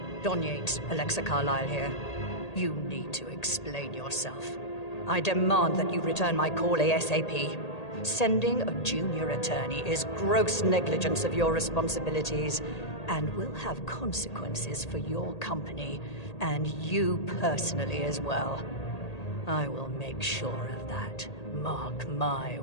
Don Yates, Alexa Carlyle here. You need to explain yourself. I demand that you return my call ASAP. Sending a junior attorney is gross negligence of your responsibilities and will have consequences for your company and you personally as well. I will make sure of that. Mark my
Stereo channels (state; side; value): late; right; 1.8 ms